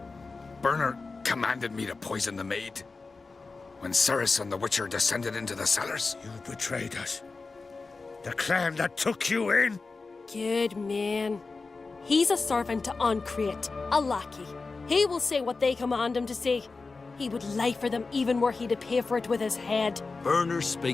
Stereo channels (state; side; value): quieter; right; 4.0 dB